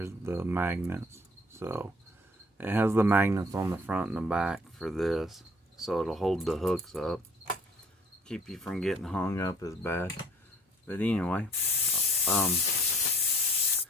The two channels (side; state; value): both; normal; correlation 0.54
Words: the magnets. So it has the magnets on the front and the back for this, so it'll hold the hooks up, keep you from getting hung up as bad. But anyway,